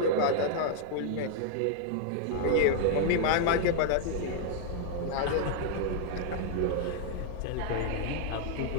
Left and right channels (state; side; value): different; both; correlation -0.01